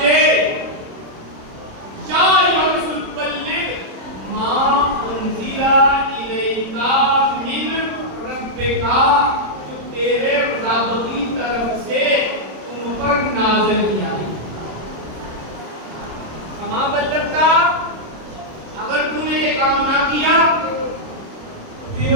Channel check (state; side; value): late; left; 26 ms